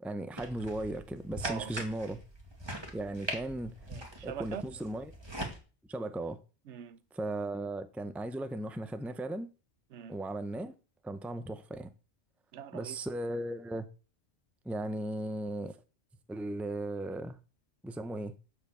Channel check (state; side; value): normal; both; correlation 0.75